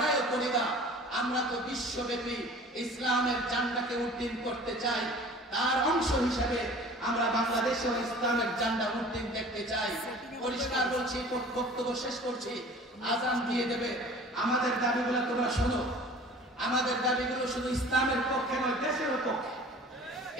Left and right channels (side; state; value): both; normal; correlation 0.45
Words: করি না। আমরা তো বিশ্বব্যাপী ইসলামের ঝান্ডাকে উড্ডীন করতে চাই, তার অংশ হিসেবে আমরা বাংলাদেশেও ইসলামের ঝান্ডা উড্ডীন দেখতে চাই। পরিষ্কার বলছি, বক্তব্য শেষ করছি, আজান দিয়ে দেবে। আমাদের দাবিগুলো তোমরা শোনো। আমাদের দাবিগুলো শুধু ইসলামের পক্ষে নয়, দেশের পক্ষে।